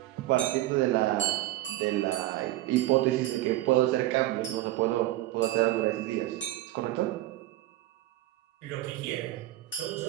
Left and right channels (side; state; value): left; quieter; 15.9 dB